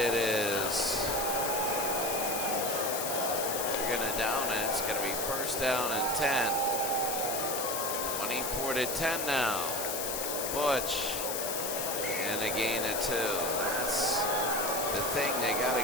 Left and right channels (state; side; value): noise; left; hiss, 2 dB below the sound